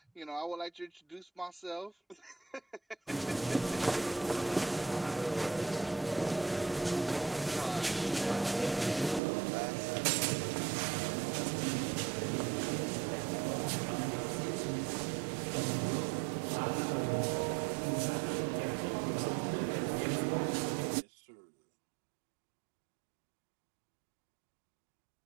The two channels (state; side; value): drops out; left; at 9.2 s